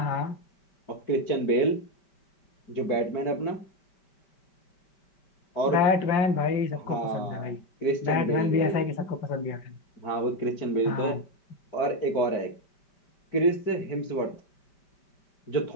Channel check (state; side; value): late; right; 5.1 ms